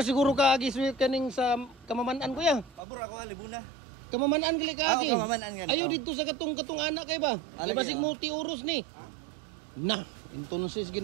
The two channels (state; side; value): drops out; left; at 2.8 s